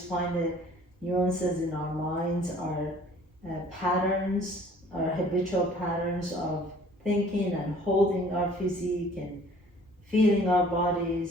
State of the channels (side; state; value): both; normal; correlation 0.53